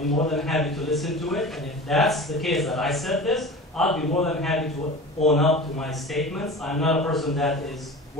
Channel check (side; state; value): both; normal; correlation 0.35